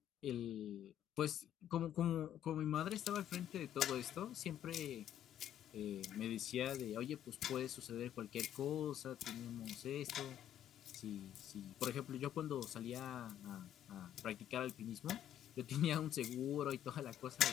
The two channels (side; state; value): right; quieter; 10.8 dB